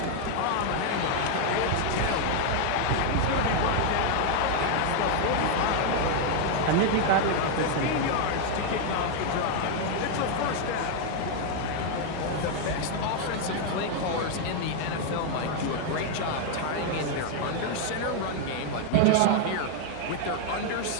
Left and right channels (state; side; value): different; both; correlation 0.00